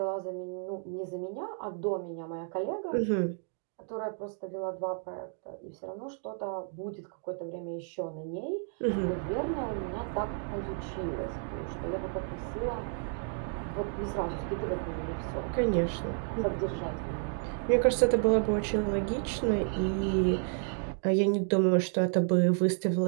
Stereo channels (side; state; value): left; silent; 57 dB below the other